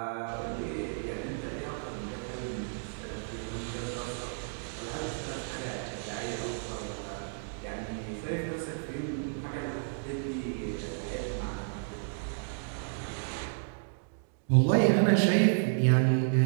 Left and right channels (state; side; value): silent; left; digital silence